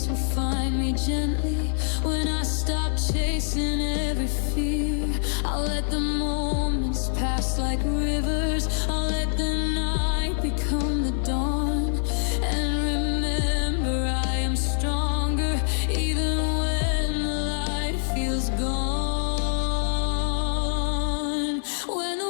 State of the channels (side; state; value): right; silent; digital silence